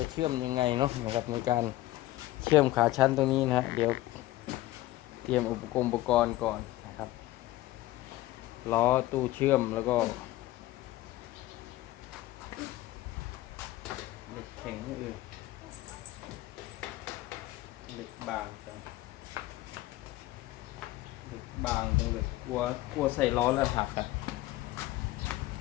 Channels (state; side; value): quieter; right; 16.7 dB